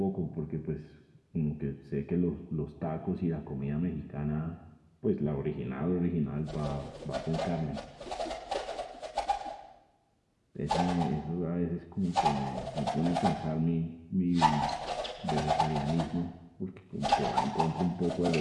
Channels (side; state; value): both; identical; correlation 1.00